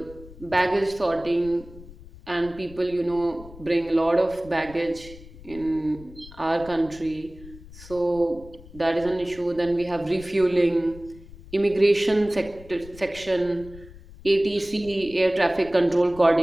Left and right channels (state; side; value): noise; left; rumble, 18 dB below the sound